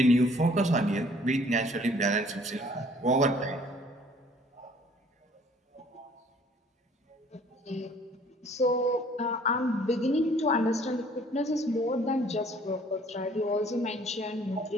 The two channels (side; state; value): both; normal; correlation 0.56